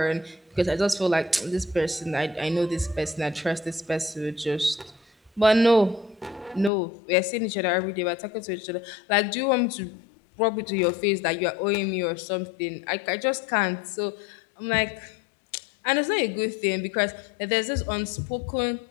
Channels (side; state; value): right; drops out; at 6.7 s